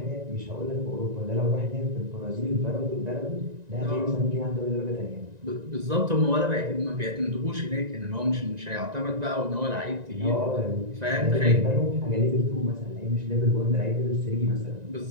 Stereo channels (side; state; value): left; late; 1.9 ms